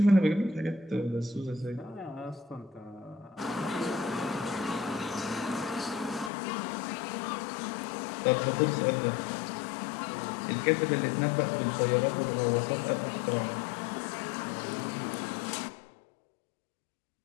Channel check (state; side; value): drops out; right; at 6.3 s